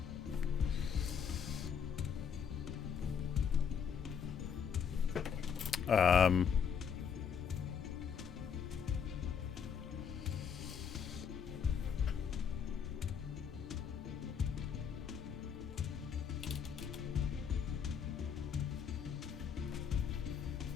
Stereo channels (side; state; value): right; quieter; 7.2 dB